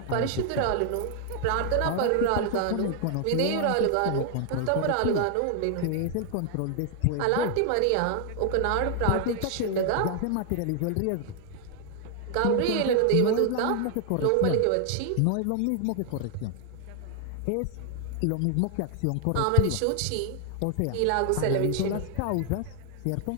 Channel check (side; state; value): both; different; correlation 0.00